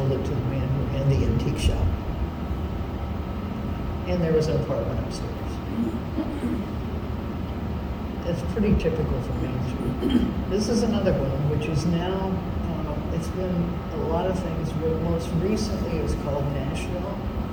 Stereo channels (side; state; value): both; identical; correlation 1.00